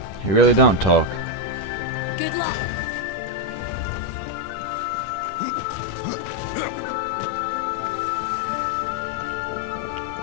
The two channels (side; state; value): right; late; 10 ms